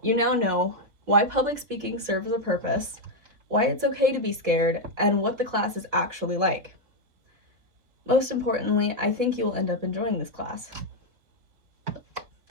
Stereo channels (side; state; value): left; late; 3.9 ms